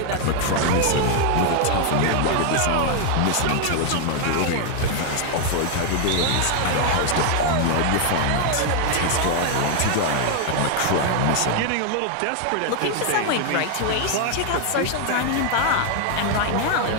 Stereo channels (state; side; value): different; both; correlation 0.00